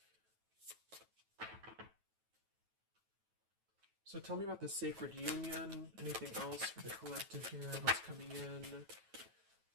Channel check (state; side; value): late; left; 9.2 ms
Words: So tell me about the sacred union. Anything else for the collective here? What's coming in?